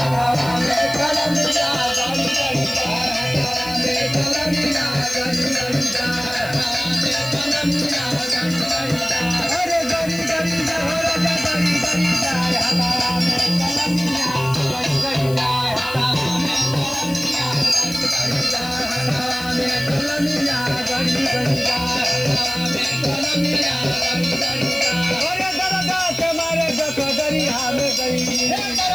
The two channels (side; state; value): left; noise; hiss, 16 dB below the sound